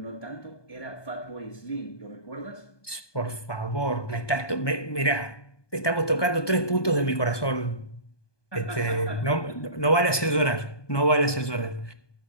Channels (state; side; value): late; right; 1.2 ms